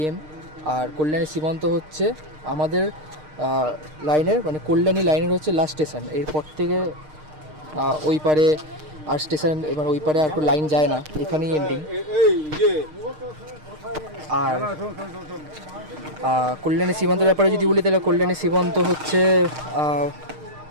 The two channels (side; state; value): left; late; 6.5 ms